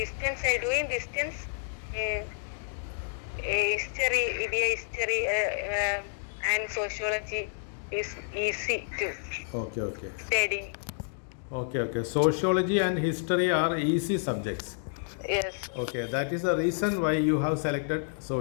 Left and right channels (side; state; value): right; silent; digital silence